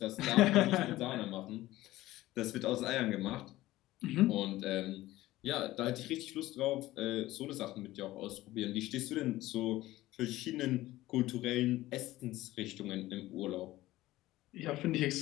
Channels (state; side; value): quieter; right; 16.7 dB